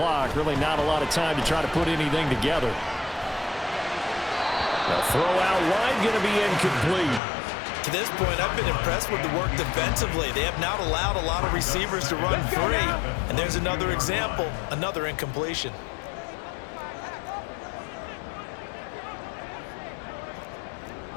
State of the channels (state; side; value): drops out; right; at 7.2 s